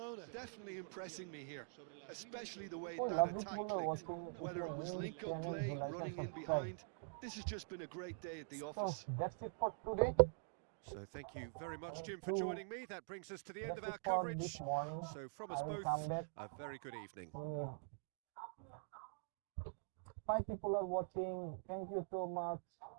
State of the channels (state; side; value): silent; left; digital silence